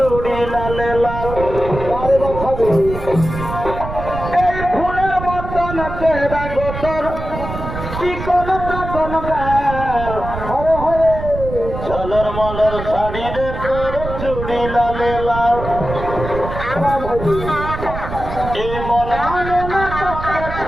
লালে লাল এই ফুলের মতন চেহারা গোতর কি কোন তখন গাল চলর মলর শাড়ি রে তোর চুড়ি লালে লাল এই মন মানে না তোকে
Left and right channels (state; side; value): noise; right; rumble, 7 dB below the sound